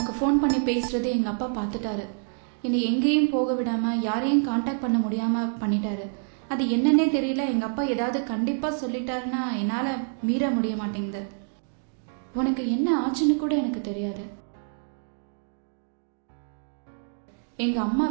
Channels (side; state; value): left; silent; digital silence